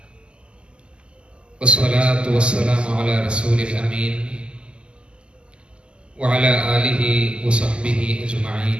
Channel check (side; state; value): left; late; 0.050 ms